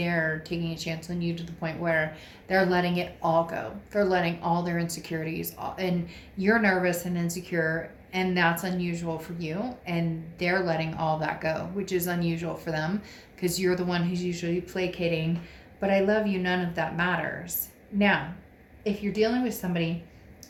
taking a chance on you to the point where they're letting it all go. They're letting all their insecurities, and you're nervous and insecure And that's unusual for you. And they're letting all that go, which is unusual for them because you're the one who's usually placating. But I love you. None of that matters. Now, if you're dealing with somebody,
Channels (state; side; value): identical; both; correlation 1.00